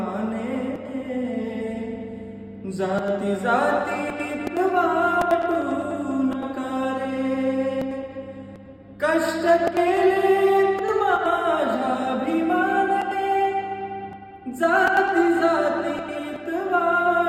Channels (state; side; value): identical; both; correlation 1.00